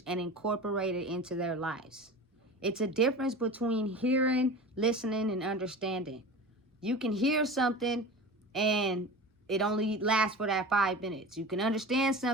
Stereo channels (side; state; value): both; normal; correlation 0.33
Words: and incorporate it into their lives. It's a difference between hearing, listening, and understanding. You can hear something and it only lasts for that 5 minutes. You can understand